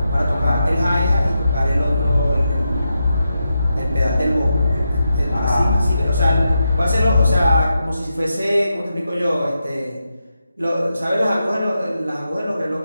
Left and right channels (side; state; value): both; inverted; correlation -0.86